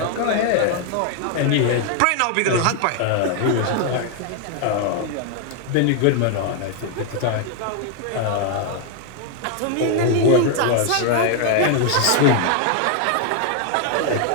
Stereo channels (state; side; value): different; both; correlation 0.00